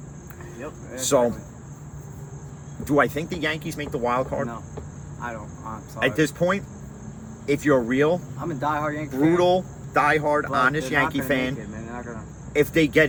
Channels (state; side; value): identical; both; correlation 1.00